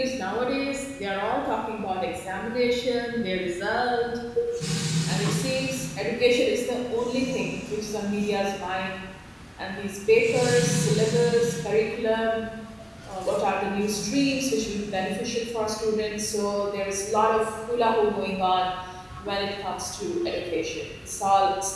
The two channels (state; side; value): identical; both; correlation 1.00